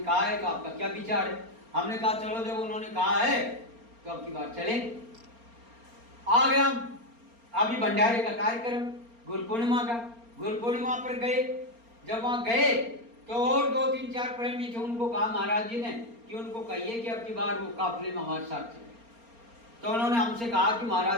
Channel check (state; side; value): late; left; 4.3 ms